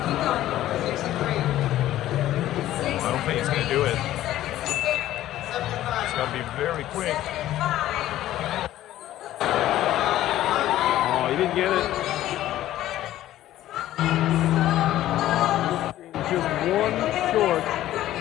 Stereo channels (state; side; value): quieter; right; 13.8 dB